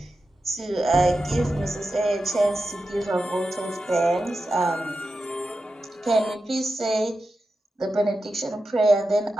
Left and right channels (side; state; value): both; normal; correlation 0.91